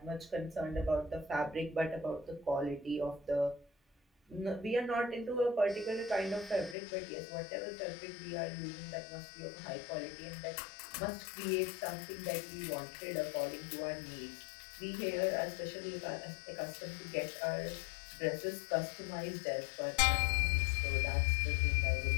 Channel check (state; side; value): drops out; right; at 6.8 s